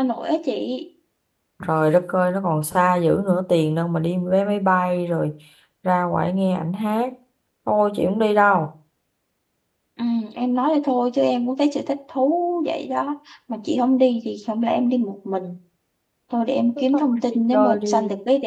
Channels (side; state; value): both; identical; correlation 1.00